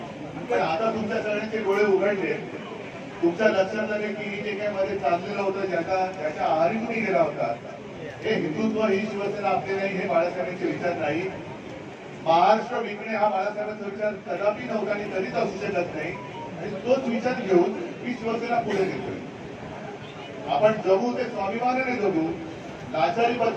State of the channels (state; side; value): identical; both; correlation 1.00